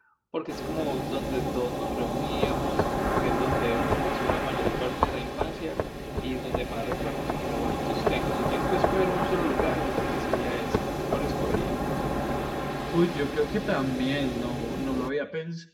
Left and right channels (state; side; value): identical; both; correlation 1.00